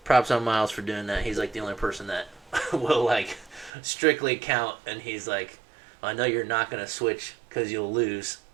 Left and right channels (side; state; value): left; drops out; at 3.7 s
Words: props on Miles for doing that. He's like the only person that will like strictly count, and he's like, I know you're not going to switch because you'll lose,